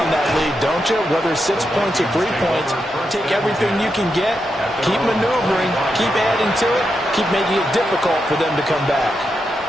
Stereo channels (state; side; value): normal; both; correlation 0.85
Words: that lead, don't you? Whether it's 6 points or 3 points, take everything you can get, keep maneuvering, keep adding to it, keep making it difficult for them to come back.